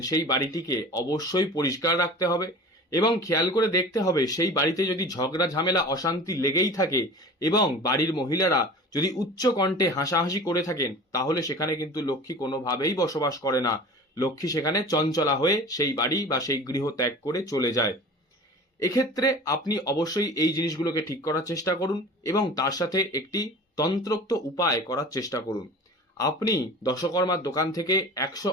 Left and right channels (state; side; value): normal; both; correlation 0.38